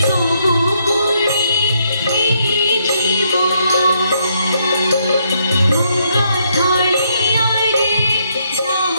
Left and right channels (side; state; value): both; inverted; correlation -0.74